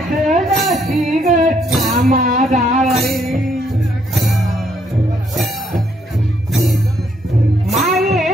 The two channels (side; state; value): both; normal; correlation 0.71